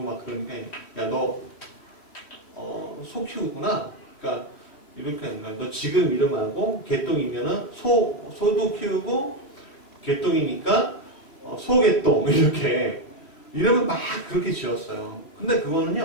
막 그러니까 야 너 소 키우구나. 그러니까 이렇게 하는 거야. 너 지금 이름하고 개똥이면은 소도 키우고 개똥이니까 소개똥 이렇게 이름을 막 그렇게 지었어요. 근데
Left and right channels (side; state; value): right; late; 3.1 ms